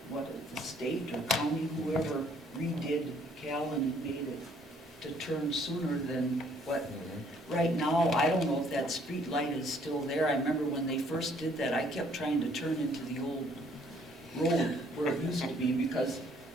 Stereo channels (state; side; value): normal; both; correlation 0.63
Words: state or county, whoever redid Callan and made it to turn sooner than what, right now, I don't know if that street light is still there. I remember when they first did that, I kept trying to turn into the old road where it used to be, because